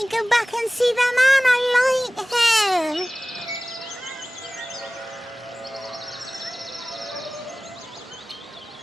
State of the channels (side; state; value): both; normal; correlation 0.98